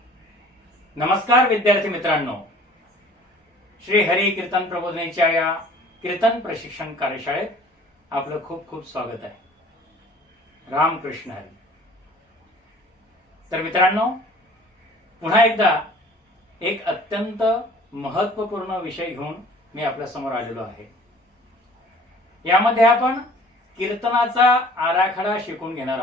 नमस्कार विद्यार्थी मित्रांनो, श्री हरी कीर्तन प्रबोधिनीच्या या कीर्तन प्रशिक्षण कार्यशाळेत आपलं खूप खूप स्वागत आहे. रामकृष्ण हरी. तर मित्रांनो, पुन्हा एकदा एक अत्यंत महत्वपूर्ण विषय घेऊन मी आपल्या समोर आलेलो आहे. यामध्ये आपण कीर्तनाचा आराखडा शिकून घेणार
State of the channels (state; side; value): normal; both; correlation 0.50